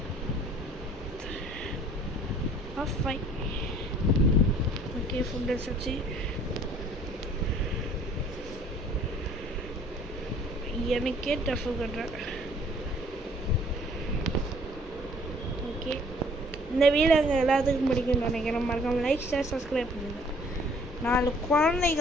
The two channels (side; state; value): both; normal; correlation 0.56